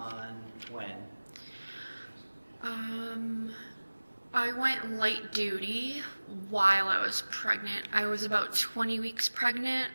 when? I went light duty while I was pregnant. I was about 20 weeks pregnant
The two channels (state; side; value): inverted; both; correlation -1.00